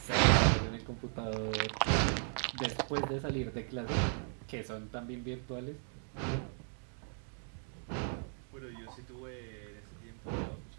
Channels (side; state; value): left; silent; 53 dB below the other